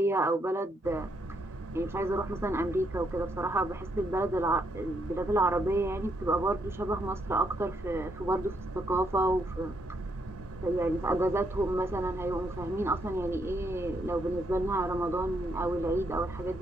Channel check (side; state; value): both; normal; correlation 0.76